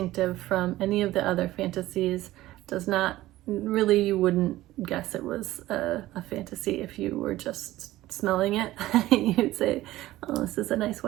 from any of the other fantasies. Does not really you wouldn't guess it was a fantasy if you were just smelling it. You'd say, oh, this is a nice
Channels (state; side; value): quieter; left; 16.1 dB